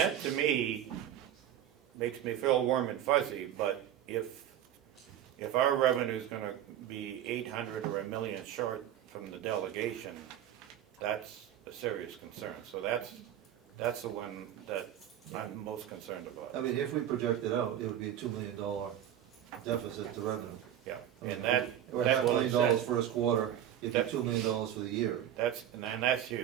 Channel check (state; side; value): quieter; left; 10.9 dB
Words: to me makes me feel warm and fuzzy, but if our revenue's gonna be 800 or $1 million short from the delegation, that's a serious concern. So that's the one that I'm most concerned about. If we project it out, it would be a $2 million deficit to revenue. Yeah, and that's Or what $500,000 it says. first quarter, it'd be $2 million for the year. And that's